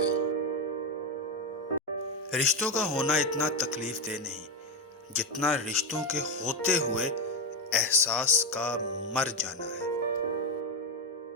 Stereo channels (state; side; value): normal; both; correlation 0.11